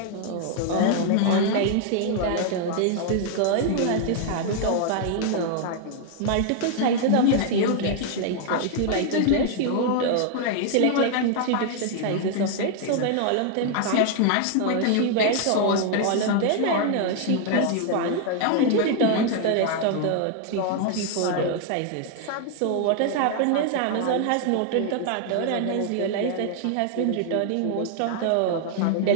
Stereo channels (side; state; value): both; different; correlation 0.00